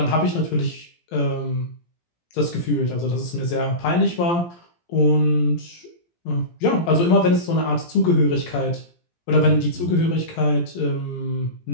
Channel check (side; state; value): right; late; 17 ms